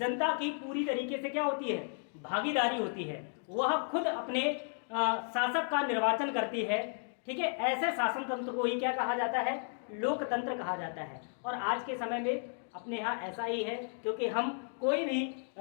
की पूरी तरीके से क्या होती है? भागीदारी होती है, वह खुद अपने शासक का निर्वाचन करती है, ठीक है, ऐसे शासन तंत्र को ही क्या कहा जाता है? लोकतंत्र कहा जाता है। और आज के समय में अपने यहाँ ऐसा ही है, क्योंकि हम कोई भी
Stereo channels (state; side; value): silent; right; 55 dB below the other